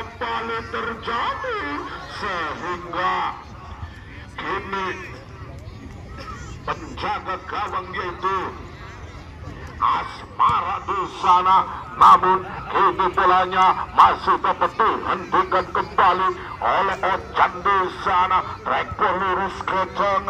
terjadi sehingga kini penjaga gawang yaitu Asmara di sana, namun kini bolanya masih dapat dihentikan kembali oleh Ojan di sana. Track lurus ke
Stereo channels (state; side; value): identical; both; correlation 1.00